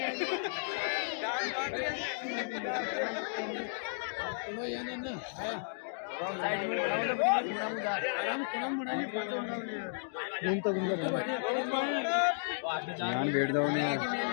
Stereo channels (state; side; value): silent; right; digital silence